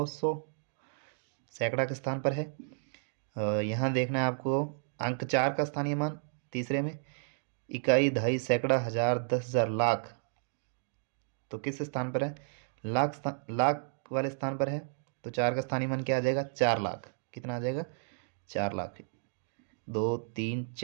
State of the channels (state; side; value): silent; left; digital silence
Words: सैकड़ा के स्थान पर है। यहाँ देखना है आपको अंक 4 का स्थानीय मान तीसरे में, इकाई दहाई सैकड़ा हजार 10,000 लाख, तो किस स्थान पर है, लाख वाले स्थान पर है, तो 4 का स्थानीय मान क्या आ जाएगा 4 लाख, कितना आ जाएगा 4 लाख, 2 3